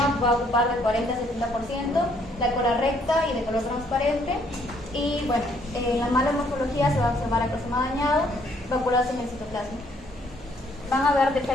va a ocupar del 40 al 70%, la cola recta y de color transparente. Y bueno, en la mala morfología se va a observar acrosoma dañado, vacuolas en el citoplasma. Van a haber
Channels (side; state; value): both; normal; correlation 0.67